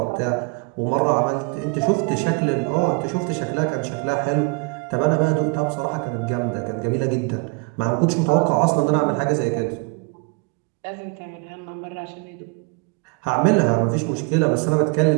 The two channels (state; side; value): quieter; left; 31.0 dB